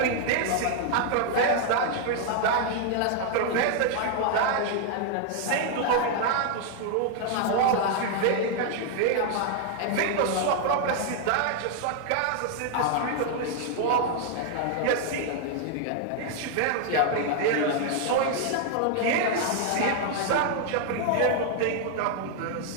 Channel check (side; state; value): both; different; correlation 0.00